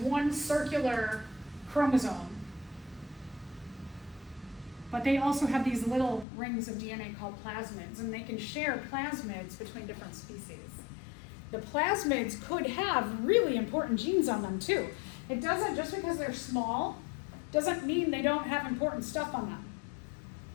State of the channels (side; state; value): right; drops out; at 6.2 s